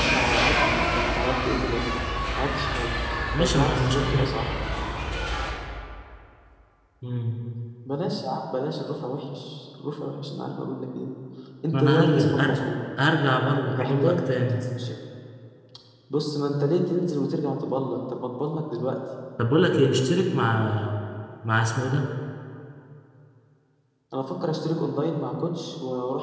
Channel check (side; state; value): both; identical; correlation 1.00